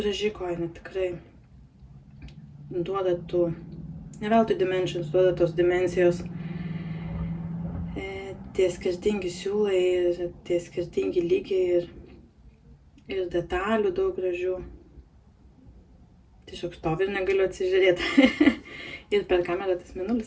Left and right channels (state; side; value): identical; both; correlation 1.00